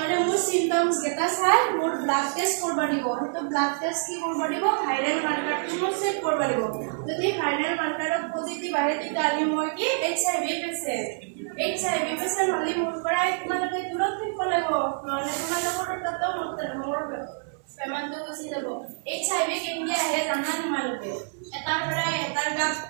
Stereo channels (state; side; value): silent; left; 60 dB below the other